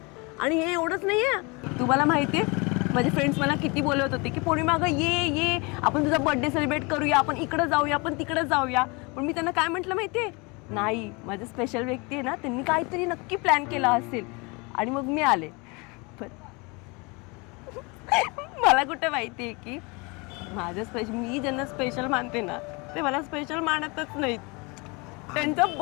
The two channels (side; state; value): right; quieter; 28.4 dB